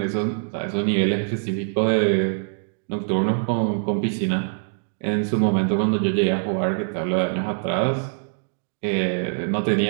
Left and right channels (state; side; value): silent; left; digital silence